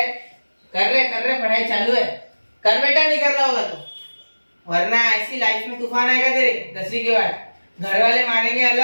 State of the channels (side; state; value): both; inverted; correlation -1.00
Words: पढ़ाई चालू है। कर बेटा, नहीं कर रहा होगा तो, वरना ऐसी लाइफ में तूफान आएगा तेरे 10वीं के बाद। घर वाले मारेंगे